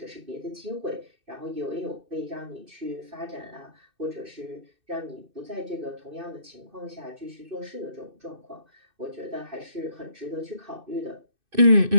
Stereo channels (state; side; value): late; left; 2.6 ms